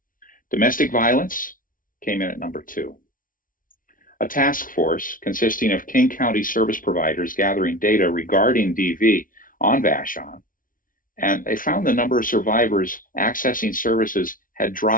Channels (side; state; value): right; late; 0.39 ms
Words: Domestic violence came in at number 2. A task force consisting of King County service providers gathering data regarding DV on Vashon, and they found the number of survivors accessing services had